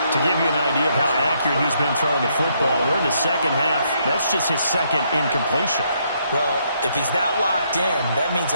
To give you an idea of how accurate he's been throwing the football, we're in the second half. That's just his 2nd incompletion. Well, if he's that locked in, that means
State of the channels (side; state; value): both; inverted; correlation -0.73